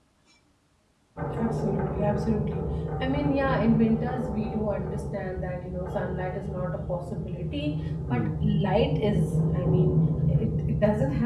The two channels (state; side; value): identical; both; correlation 1.00